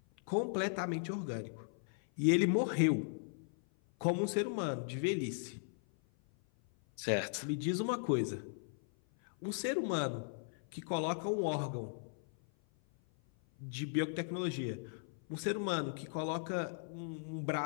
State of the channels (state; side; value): silent; right; 53 dB below the other